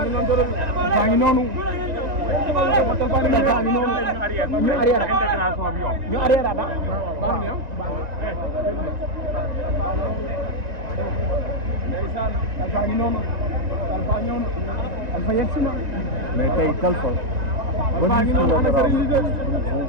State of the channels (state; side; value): late; left; 1.9 ms